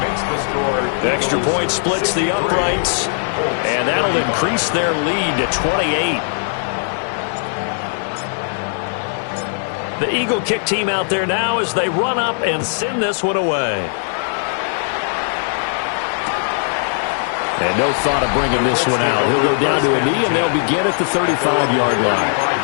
Extra point splits the uprights. And that'll increase their lead to 28. The Eagle kick team out there now as they run up and send this one away. And no thought of bringing this one out. He'll go down to a knee, and they'll begin at the 35-yard line.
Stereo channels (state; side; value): silent; right; digital silence